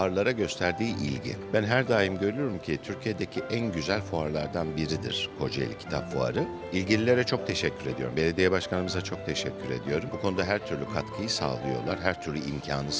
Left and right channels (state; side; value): identical; both; correlation 1.00